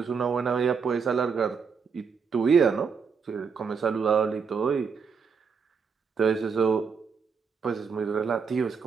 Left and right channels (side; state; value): left; quieter; 5.9 dB